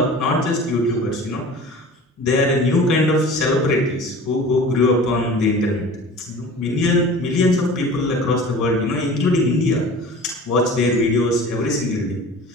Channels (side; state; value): both; normal; correlation 0.40